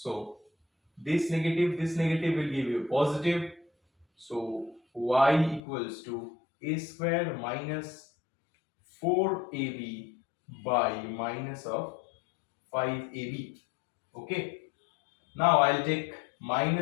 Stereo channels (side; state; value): right; drops out; at 5.6 s